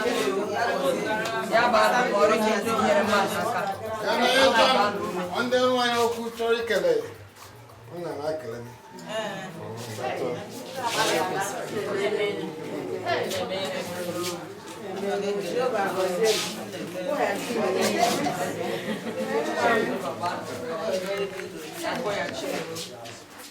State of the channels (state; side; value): identical; both; correlation 1.00